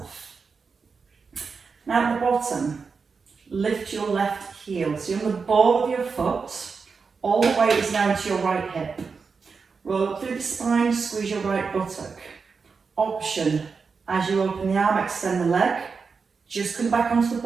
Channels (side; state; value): left; quieter; 5.1 dB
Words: Now at the bottom, lift your left heel. So you're on the ball of your foot, all the weight is now into your right hip. Roll up through the spine, squeeze your right buttock. Option, as you open the arm, extend the leg, just come back onto the